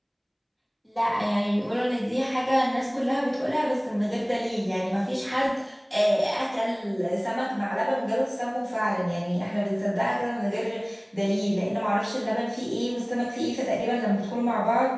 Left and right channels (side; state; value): both; identical; correlation 1.00